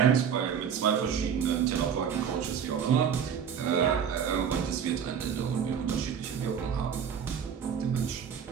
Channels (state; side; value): quieter; left; 7.7 dB